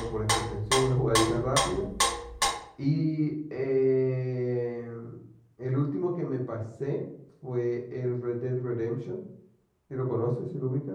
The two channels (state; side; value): identical; both; correlation 1.00